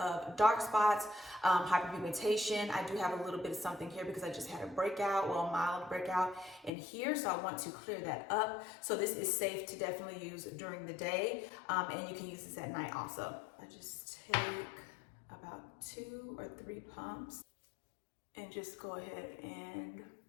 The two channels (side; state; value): right; drops out; at 6.7 s